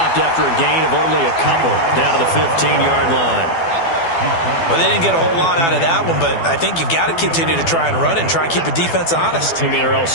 after a gain of only a couple down to the 15-yard line. Well, they didn't get a whole lot out of that one, but I think you've got to continue to try and run and try and keep a defense honest. You mean, or else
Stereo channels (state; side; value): late; right; 12 ms